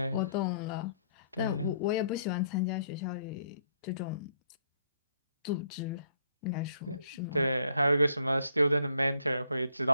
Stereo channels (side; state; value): both; inverted; correlation -0.67